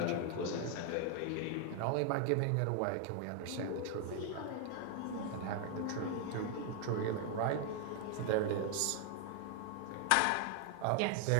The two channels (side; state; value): both; different; correlation 0.00